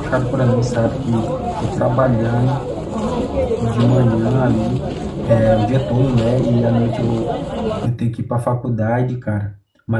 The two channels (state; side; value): identical; both; correlation 1.00